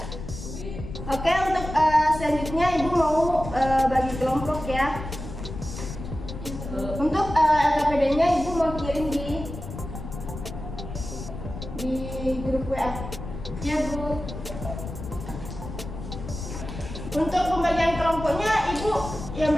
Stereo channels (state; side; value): noise; left; rumble, 9 dB below the sound